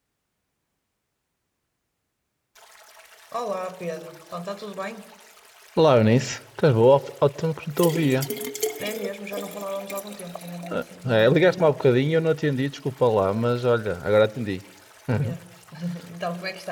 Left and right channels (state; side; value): identical; both; correlation 1.00